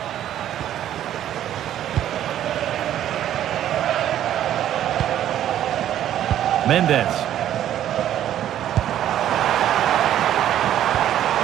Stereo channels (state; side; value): quieter; left; 11.4 dB